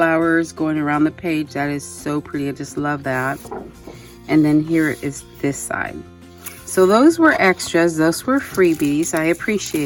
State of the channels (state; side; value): identical; both; correlation 1.00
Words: going around the page. That is so pretty. I just love that. And then here is this side. So those were extras. Those were freebies. I